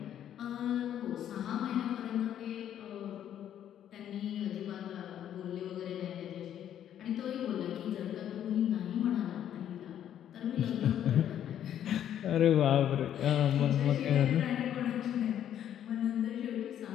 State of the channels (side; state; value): right; quieter; 10.3 dB